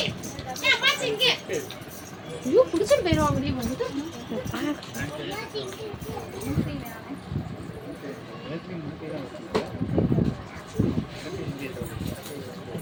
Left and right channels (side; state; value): both; identical; correlation 1.00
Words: ஐயோ பிடிச்சிட்டு போயிடுவாங்க முடியும் வந்துட்டு.